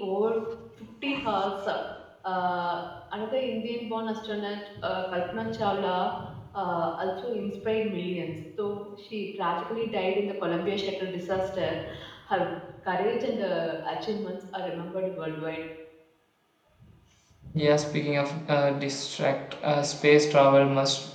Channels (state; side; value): identical; both; correlation 1.00